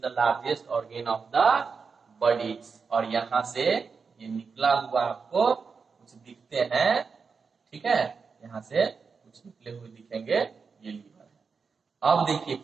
largest organ of the body. और यहाँ से ये निकला हुआ आपको कुछ दिखते हैं, ठीक है, यहाँ से कुछ निकले हुए दिखेंगे, ये लीवर है। अब देखिए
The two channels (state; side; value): quieter; left; 5.3 dB